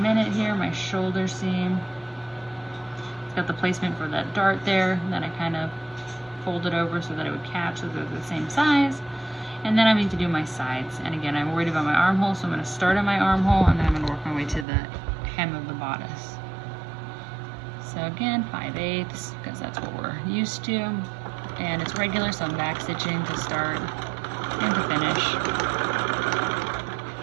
here, my shoulder seam. It's got the placement for that dart there, and then I kind of folded over so that it would catch so they're the same size. And then I need to do my sides. And again, I'm worried about my armhole, so I'm going to start at my armhole, and then I'm going to work my way to the hem of the bodice. So again, 5/8, because that's what we're used to. And it's regular, so I'm back stitching to start and to finish.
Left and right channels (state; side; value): drops out; left; at 14.7 s